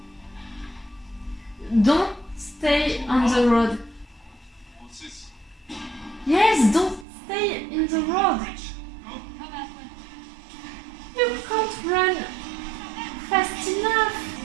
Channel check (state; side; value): drops out; left; at 7.1 s